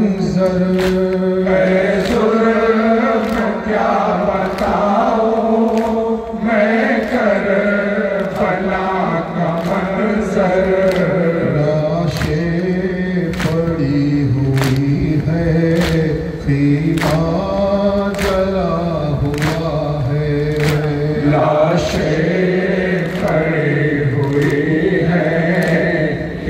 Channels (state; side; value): identical; both; correlation 1.00